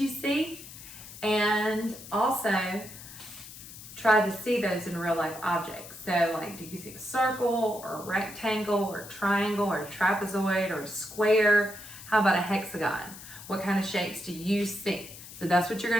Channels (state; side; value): noise; left; hiss, 15 dB below the sound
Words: see, and also try to see those in real life objects. So like, do you see a circle or a rectangle or a triangle or a trapezoid or a square? How about a hexagon? What kind of shapes do you see? So that's what you're